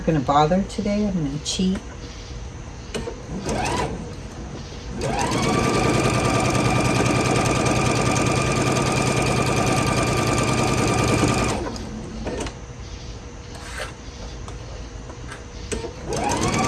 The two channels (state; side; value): identical; both; correlation 1.00